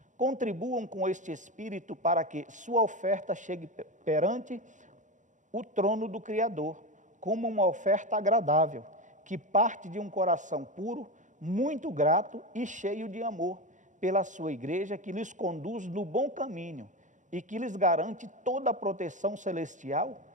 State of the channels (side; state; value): left; late; 0.36 ms